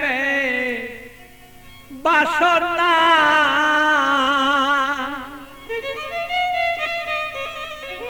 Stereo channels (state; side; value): identical; both; correlation 1.00